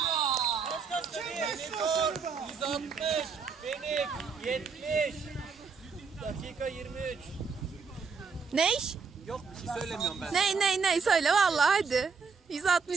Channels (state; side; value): quieter; left; 5.3 dB